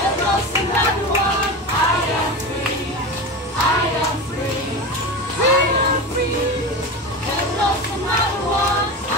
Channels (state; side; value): normal; both; correlation 0.25